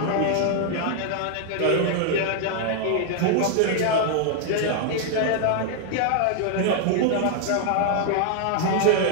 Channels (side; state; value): both; different; correlation 0.00